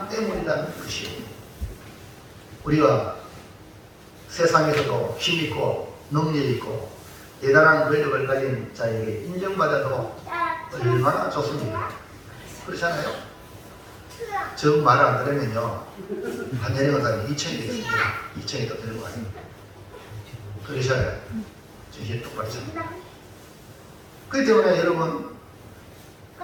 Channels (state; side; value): identical; both; correlation 1.00